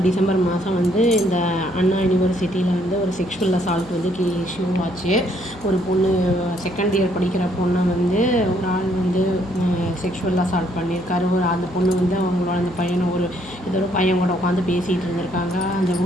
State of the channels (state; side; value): noise; left; hum, 18 dB below the sound